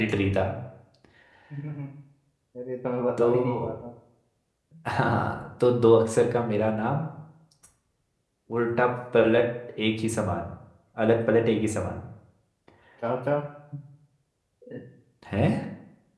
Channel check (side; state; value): both; identical; correlation 1.00